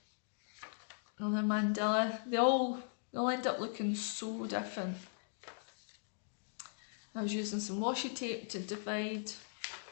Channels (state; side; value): silent; right; digital silence